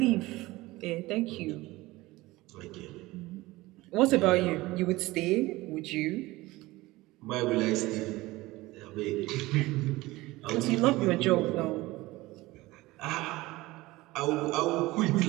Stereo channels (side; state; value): left; quieter; 19.6 dB